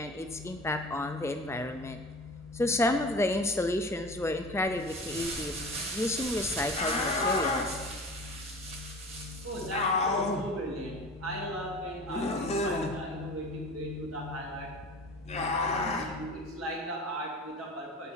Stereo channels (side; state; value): both; normal; correlation 0.38